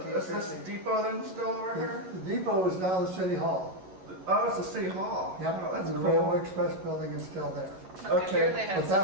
this depot then still over here? The depot is now the city hall. Oh, it's the city hall. Yep, Oh, that's the cool. Railway Express building is still there. Okay, Here they had but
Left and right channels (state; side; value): late; left; 11 ms